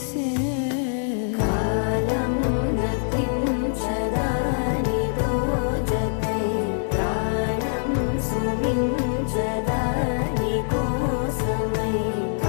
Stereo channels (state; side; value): silent; right; 63 dB below the other